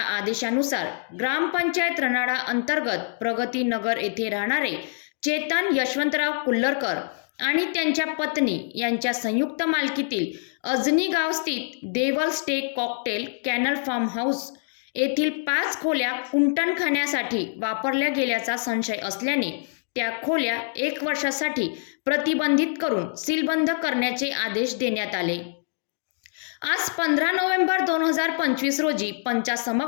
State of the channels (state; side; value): silent; right; digital silence